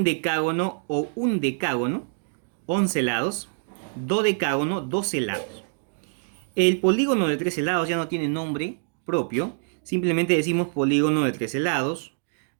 o undecágono, 11 lados. Dodecágono, 12 lados. El polígono de 13 lados ya no tiene nombre propio. Simplemente decimos polígono de 13 lados,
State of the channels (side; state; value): left; silent; digital silence